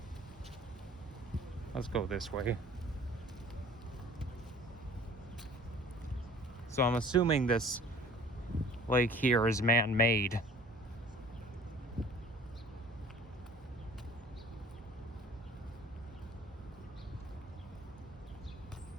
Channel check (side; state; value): both; normal; correlation 0.49